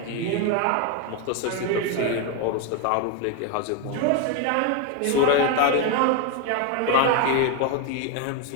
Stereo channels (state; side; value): different; both; correlation 0.02